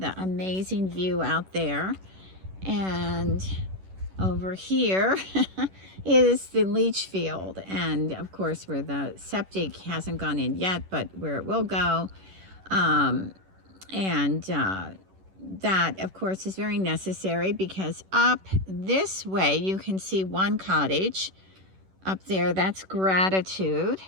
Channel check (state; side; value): late; left; 11 ms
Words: amazing view out there. And over here is the leach field. And of course, where the septic hasn't gone in yet, but where it will go. That, of course, is very necessary because up this way, you can see one cottage. Up there, that's Gratitude.